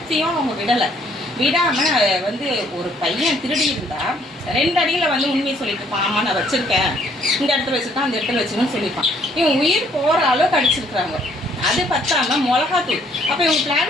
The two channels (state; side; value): normal; both; correlation 0.64